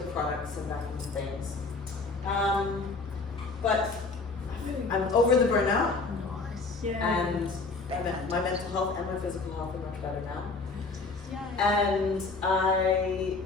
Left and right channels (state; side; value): quieter; right; 3.9 dB